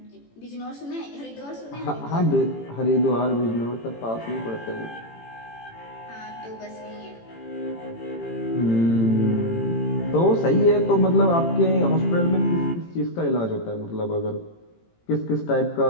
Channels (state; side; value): late; right; 18 ms